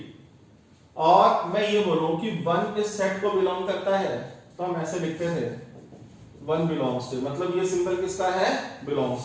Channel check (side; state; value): both; identical; correlation 1.00